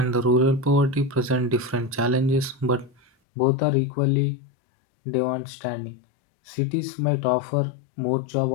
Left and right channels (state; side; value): drops out; right; at 3.1 s